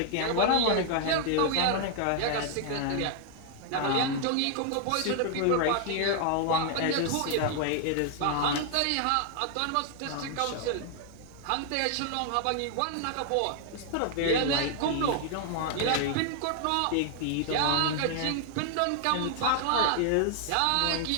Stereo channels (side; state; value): both; different; correlation 0.00